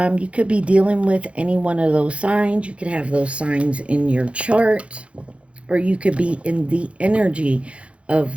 could be dealing with any one of those signs. You could have those signs in your chart, or you could be in the energy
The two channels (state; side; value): late; left; 0.061 ms